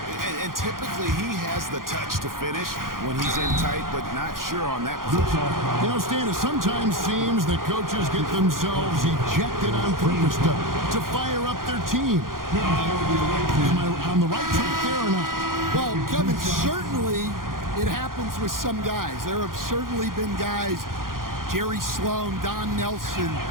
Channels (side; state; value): left; late; 0.91 ms